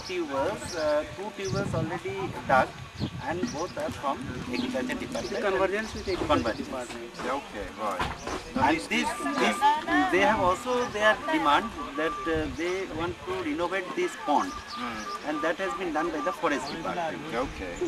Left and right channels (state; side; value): identical; both; correlation 1.00